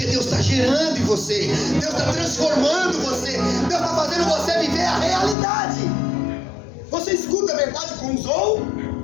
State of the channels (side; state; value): right; drops out; at 5.4 s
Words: Deus está gerando em você, Deus está transformando você, Deus está fazendo você viver a realidade. Você escuta a verdade com os